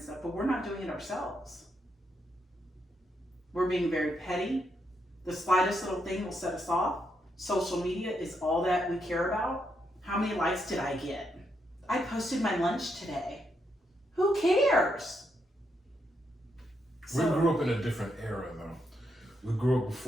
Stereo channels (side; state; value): both; normal; correlation 0.80